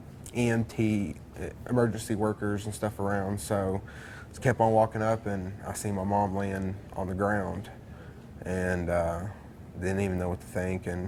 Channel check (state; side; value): identical; both; correlation 1.00